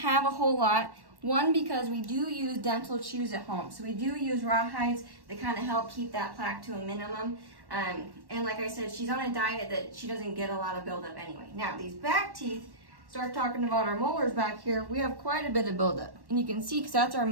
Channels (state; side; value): late; left; 1.1 ms